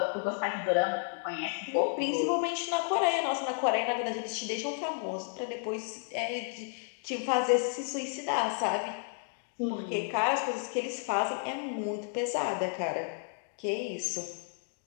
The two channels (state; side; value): silent; right; 56 dB below the other